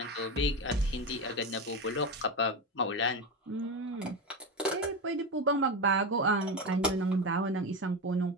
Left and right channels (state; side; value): normal; both; correlation 0.17